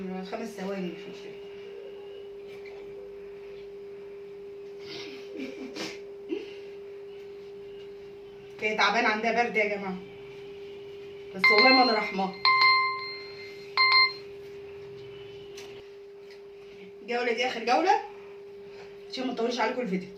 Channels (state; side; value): identical; both; correlation 1.00